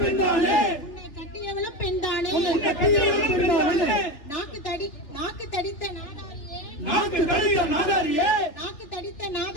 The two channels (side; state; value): right; late; 3.4 ms